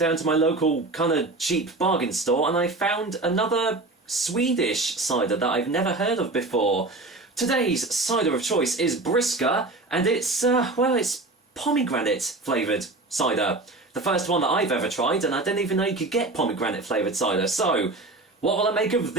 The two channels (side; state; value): left; quieter; 3.1 dB